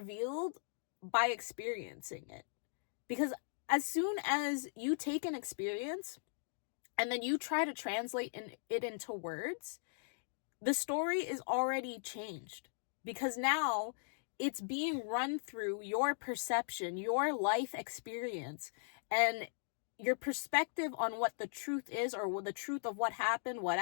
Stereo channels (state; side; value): silent; right; digital silence